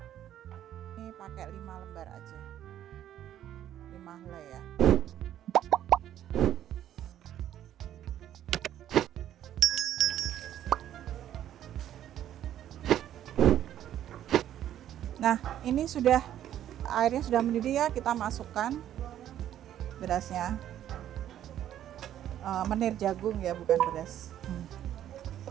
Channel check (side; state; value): left; quieter; 11.4 dB